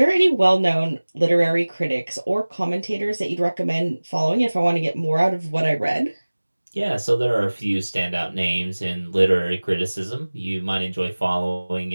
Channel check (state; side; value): inverted; both; correlation -1.00